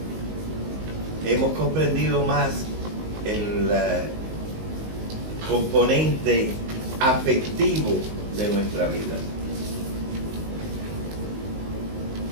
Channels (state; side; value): late; left; 19 ms